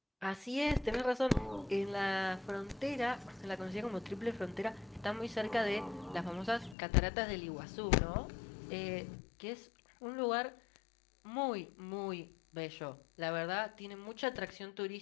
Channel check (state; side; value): drops out; right; at 6.8 s